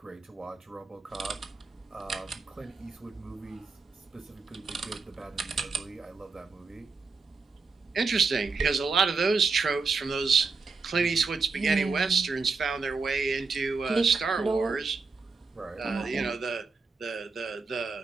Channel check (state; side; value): quieter; left; 4.4 dB